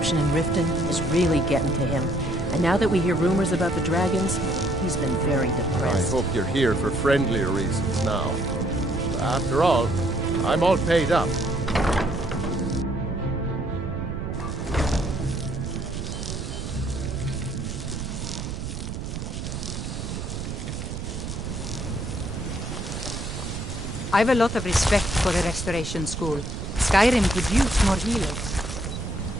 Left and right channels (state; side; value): noise; right; rumble, 6 dB below the sound